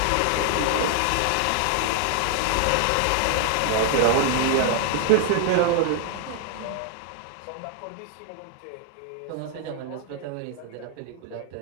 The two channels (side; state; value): both; different; correlation 0.00